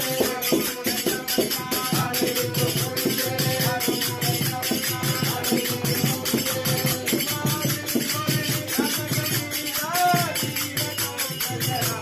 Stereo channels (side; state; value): both; identical; correlation 1.00